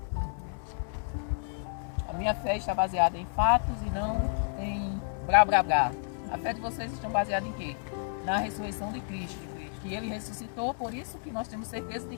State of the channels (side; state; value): right; silent; digital silence